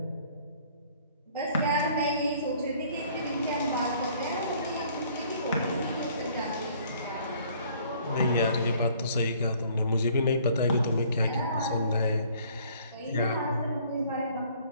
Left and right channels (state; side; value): inverted; both; correlation -0.58